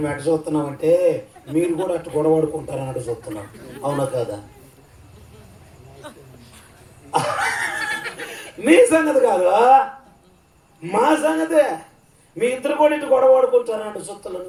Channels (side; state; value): both; identical; correlation 1.00